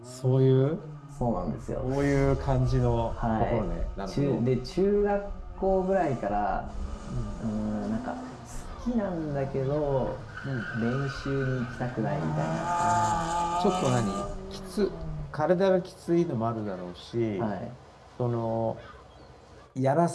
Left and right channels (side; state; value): both; identical; correlation 1.00